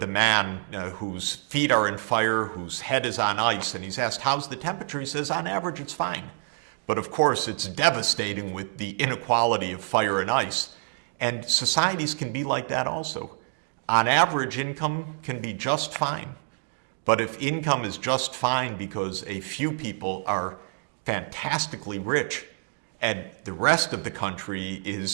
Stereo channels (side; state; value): left; silent; digital silence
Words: the man whose feet are in fire, whose head is on ice, and he's asked, "How's the temperature?" He says, "On average, it's fine." But of course, it's devastating with the inequality of fire and ice. And societies can be like that also. On average, income can be just fine. But if income is just fine because a few people are fantastically rich and the rest of the country